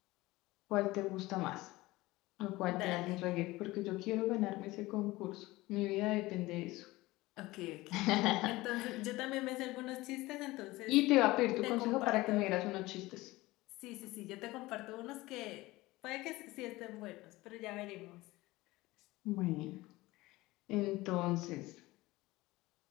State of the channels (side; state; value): right; quieter; 19.6 dB